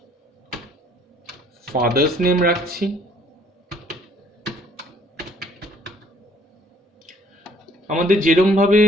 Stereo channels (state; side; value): normal; both; correlation 0.60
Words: ফাদার্স নেম রাখছি, আমাদের যেরকম ভাবে